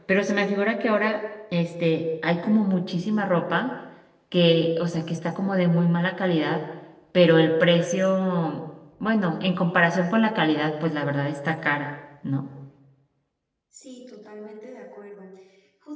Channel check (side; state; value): both; identical; correlation 1.00